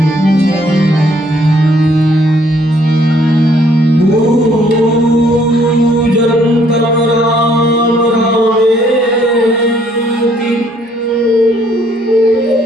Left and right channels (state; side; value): normal; both; correlation 0.65